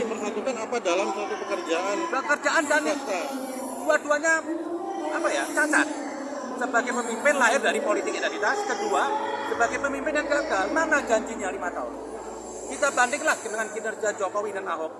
persatukan apa dalam suatu pekerjaan dan dua-duanya cacat. Sebagai pemimpin lahir dari politik identitas, kedua sebagai pemimpin yang gagal. Mana janjinya 5 tahun? Kita bandinglah dengan kinerja Jokowi dan Ahok,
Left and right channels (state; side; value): identical; both; correlation 1.00